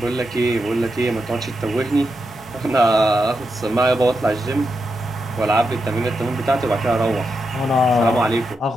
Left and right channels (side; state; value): both; normal; correlation 0.86